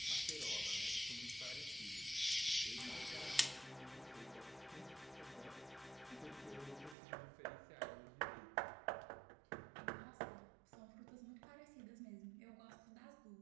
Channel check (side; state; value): left; drops out; at 7.0 s